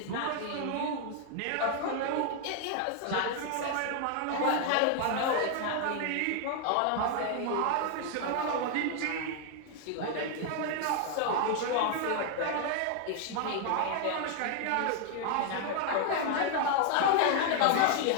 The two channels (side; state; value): both; different; correlation 0.00